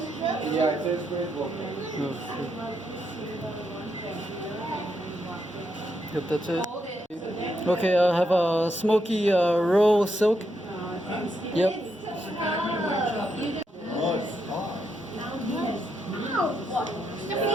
Yeah, it says great book. Yep, that's it. Okay, I have a Smokey Row Silk. Yep.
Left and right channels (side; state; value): both; normal; correlation 0.80